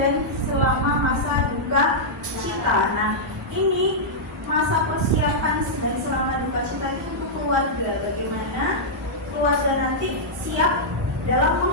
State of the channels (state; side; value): normal; both; correlation -0.09